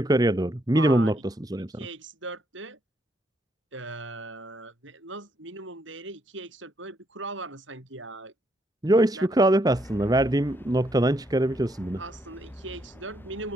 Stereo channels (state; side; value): normal; both; correlation 0.74